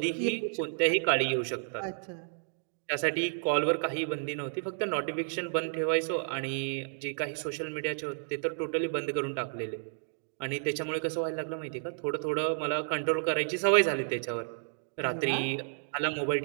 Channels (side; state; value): left; silent; digital silence